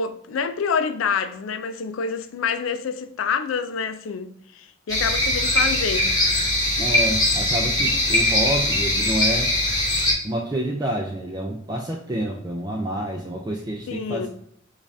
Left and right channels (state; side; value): normal; both; correlation 0.12